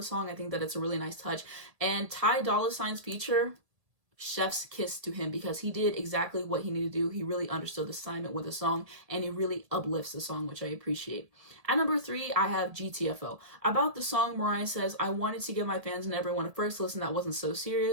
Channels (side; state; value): left; late; 1.7 ms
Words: song. I think that it's a really nice touch. And Ty Dolla $ign's feature, chef's kiss to him, because he did exactly what he needed to do. He really understood the assignment with the song, and he really uplifts the song, which I appreciate. At number 3, I have GTFO. About the song, Mariah says, I wanted to give my fans and everyone a first listen that wasn't so